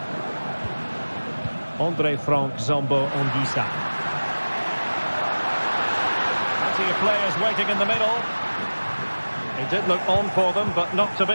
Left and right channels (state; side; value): inverted; both; correlation -1.00